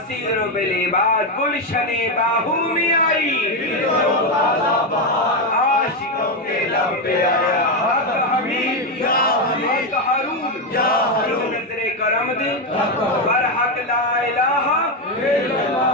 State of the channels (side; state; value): both; normal; correlation 0.08